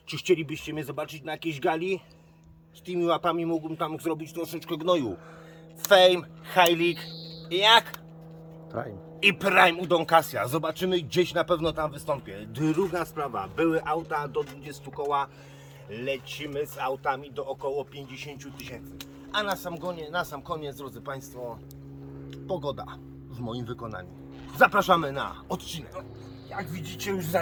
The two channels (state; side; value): identical; both; correlation 1.00